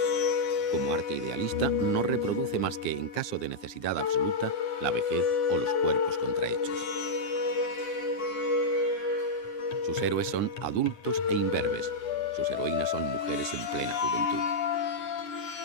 Como arte idealista, no reproduce más que, en caso de necesidad absoluta, la vejez o los cuerpos contrahechos. Sus héroes son adultos e imberbes. Sus heroínas son mujeres en plena juventud.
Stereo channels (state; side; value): late; right; 9.7 ms